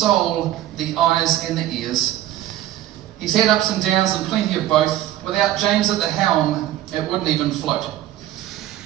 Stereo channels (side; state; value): left; quieter; 13.5 dB